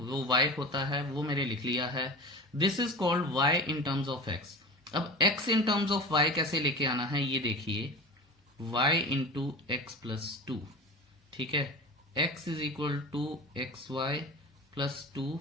y होता है, वो मैंने लिख लिया है। This is called y in terms of x। अब x in terms of y कैसे लेके आना है, ये देखिए, y इंटू एक्स प्लस 2, ठीक है, x is equal to x y plus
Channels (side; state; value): both; normal; correlation 0.32